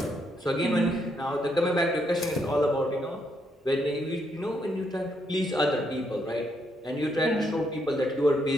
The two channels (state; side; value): normal; both; correlation 0.76